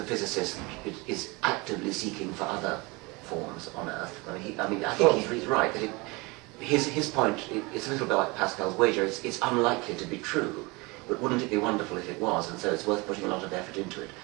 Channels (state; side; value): quieter; left; 25.6 dB